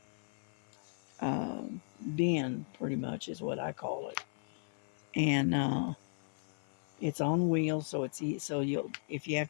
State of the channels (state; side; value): silent; right; 54 dB below the other